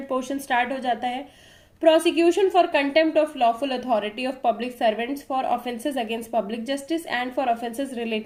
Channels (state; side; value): identical; both; correlation 1.00